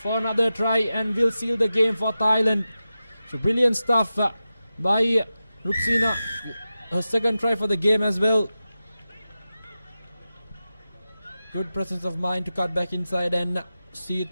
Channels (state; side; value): inverted; both; correlation -0.92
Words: for another try and will seal the game for Thailand. So brilliant stuff by Ruxina, her second try for the game as well. Good presence of mind to cut back inside and see